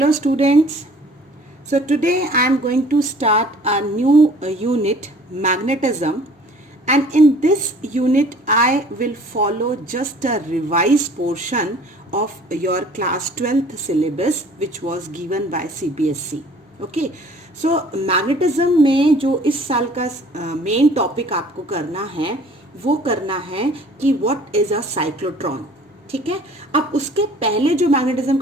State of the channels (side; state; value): both; normal; correlation 0.52